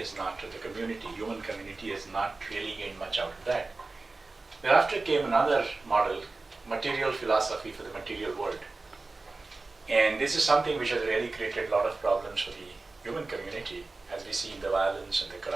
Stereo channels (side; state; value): left; quieter; 3.5 dB